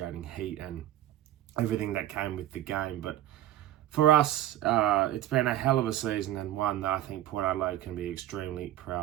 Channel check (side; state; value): left; quieter; 13.3 dB